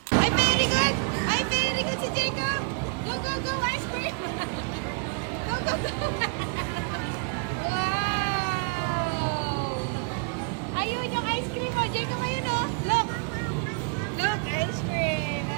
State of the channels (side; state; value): left; quieter; 35.2 dB